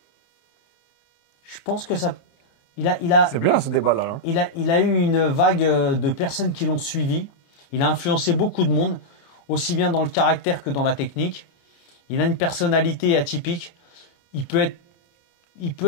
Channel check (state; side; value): late; right; 29 ms